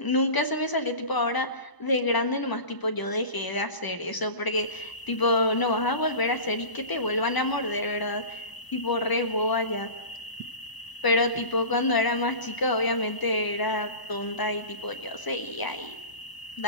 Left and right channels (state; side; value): late; right; 1.0 ms